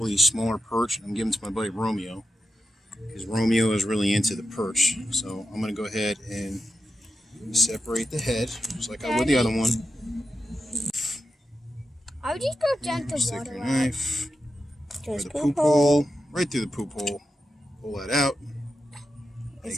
of these smaller perch, and I'm giving them to my buddy Romeo, because Romeo is really into the perch. So I'm going to go ahead and separate the head, just like I would the other one. I would just go down to Stick water. your knife through the poop poop hole, right through the poop hole. Pull that out. Is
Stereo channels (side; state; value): both; normal; correlation 0.88